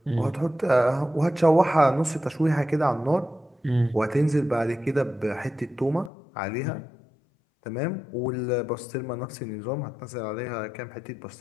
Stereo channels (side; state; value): right; drops out; at 6.1 s